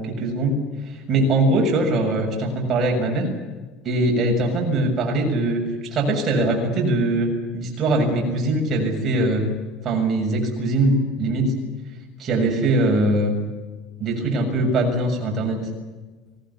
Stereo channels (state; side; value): normal; both; correlation 0.38